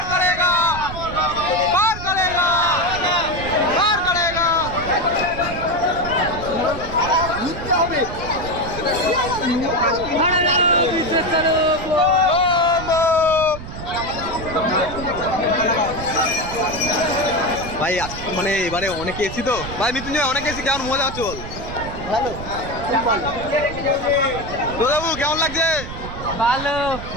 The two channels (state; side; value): noise; right; rumble, 10 dB below the sound